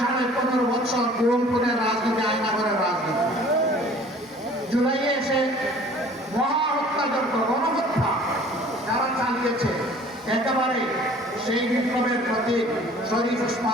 15.5 বছর বিরোধপুরের রাজনীতি, আয়নাগরের রাজনীতি, জুলাইয়ে এসে মহা হত্যাযজ্ঞ, গণহত্যা যারা চালিয়েছে, একেবারে সেই বিপ্লবের প্রতি শরীফ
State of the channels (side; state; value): both; normal; correlation 0.50